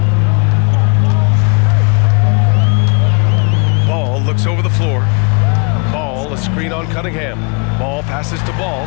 Ball looks over the floor. Ball, a screen on Cunningham. Ball passes to Ball.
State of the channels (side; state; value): right; quieter; 36.7 dB